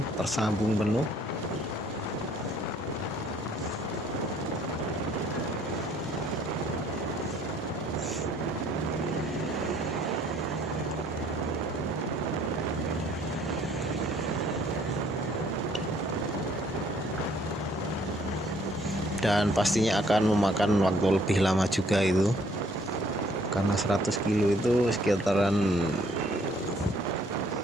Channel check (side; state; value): both; normal; correlation 0.62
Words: tersambung penuh. Dan pastinya akan memakan waktu lebih lama juga itu, karena 100 kilo itu sekitaran